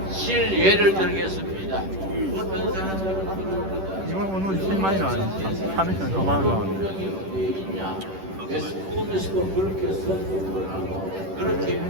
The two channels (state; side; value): late; left; 10 ms